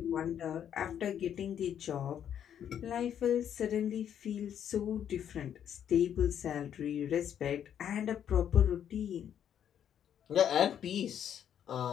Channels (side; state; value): right; quieter; 9.4 dB